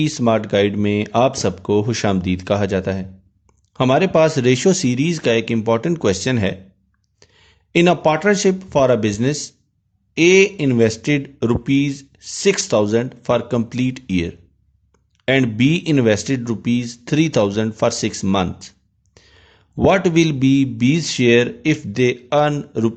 smart guide में आप सबको खुशामदीद कहा जाता है। हमारे पास रेशो सीरीज का एक इम्पॉर्टेंट क्वेश्चन है। In a partnership for a business, A invested ₹6,000 for complete year and B invested ₹3,000 for 6 months. What will be B's share if they earn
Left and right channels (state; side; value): identical; both; correlation 1.00